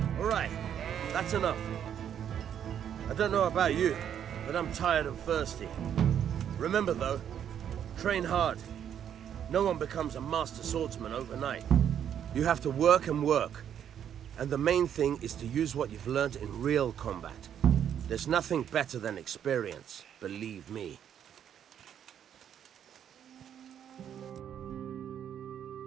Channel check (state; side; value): quieter; left; 9.2 dB